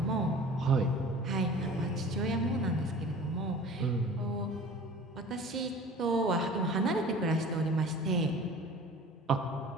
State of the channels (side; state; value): both; normal; correlation 0.43